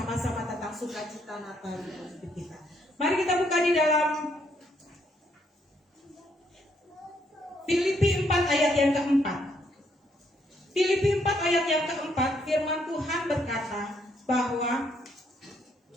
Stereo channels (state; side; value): normal; both; correlation 0.72